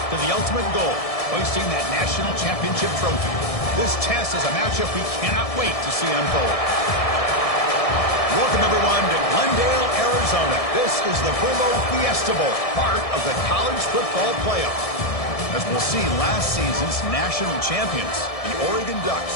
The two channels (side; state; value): right; late; 1.7 ms